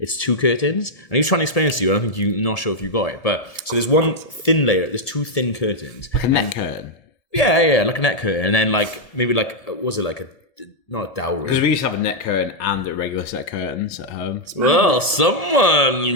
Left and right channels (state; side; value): late; right; 1.7 ms